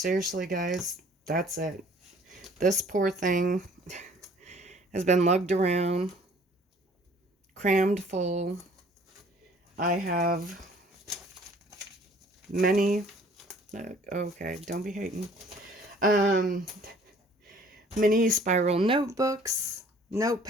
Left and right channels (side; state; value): both; normal; correlation 0.55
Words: guys, that's it. This poor thing has been lugged around, crammed full. I have many, okay, don't be hating, mini spiral notebooks,